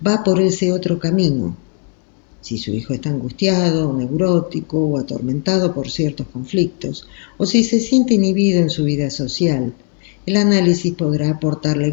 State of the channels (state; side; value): quieter; right; 37.5 dB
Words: Va por ese otro camino. si su hijo está angustiado, neurótico o atormentado por ciertos conflictos, o si se siente inhibido en su vida social. El análisis podrá aportarle